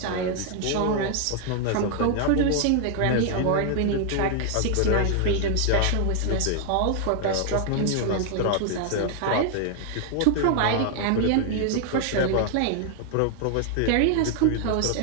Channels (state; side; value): different; both; correlation 0.00